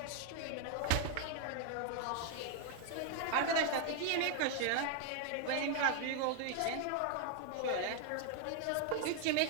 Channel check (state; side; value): different; both; correlation 0.00